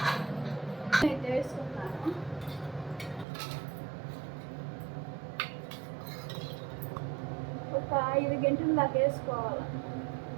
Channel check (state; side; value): drops out; left; at 3.2 s